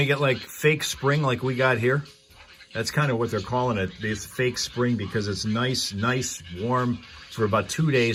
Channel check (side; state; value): both; identical; correlation 1.00